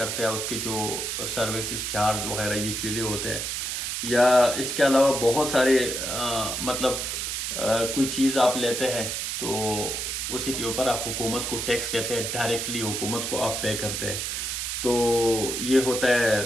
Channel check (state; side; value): noise; right; hiss, 2 dB below the sound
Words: ہے، اس کے جو سروسز چارج وغیرہ یہ چیزیں ہوتے ہیں. یا اس کے علاوہ بہت سارے مطلب کوئی چیز آپ لیتے ہیں تو اسی کے اوپر آپ حکومت کو ٹیکس دیتے ہیں، ڈائریکٹلی حکومت کو آپ پے کرتے ہیں. تو یہ ہوتا ہے